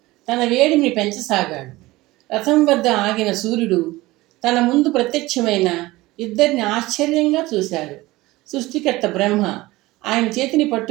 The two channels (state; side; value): quieter; left; 19.4 dB